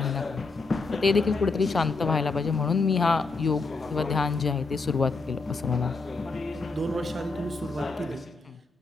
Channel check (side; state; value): right; quieter; 3.9 dB